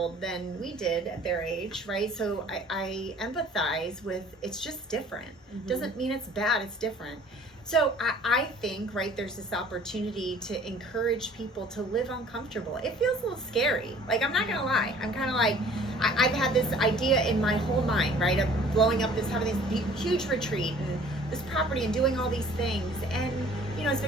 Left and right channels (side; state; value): both; normal; correlation 0.52